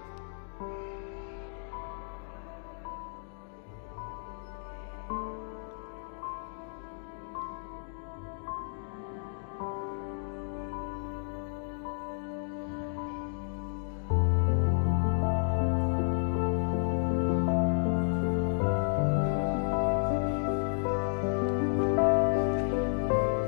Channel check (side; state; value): right; silent; digital silence